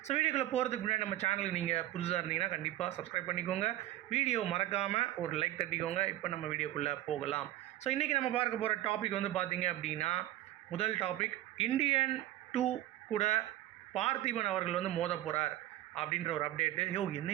ஸோ வீடியோக்குள்ளே போகிறதுக்கு முன்னாடி நம்ம சேனலுக்கு நீங்கள் புதுசாக இருந்தீங்கன்னா கண்டிப்பாக சப்ஸ்கிரைப் பண்ணிக்கோங்க. வீடியோ மறக்காமல் ஒரு லைக் தட்டிக்கோங்க. இப்போ நம்ம வீடியோக்குள்ளே போகலாம். ஸோ இன்றைக்கி நம்ம பார்க்க போகிற டாபிக் வந்து பார்த்திங்க அப்படின்னா, முதல் டாபிக், இந்தியன் 2 கூட பார்த்திபன் அவர்கள் வந்து மோத போகிறார் அப்படின்ற ஒரு அப்டேட்டு.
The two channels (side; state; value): left; quieter; 14.7 dB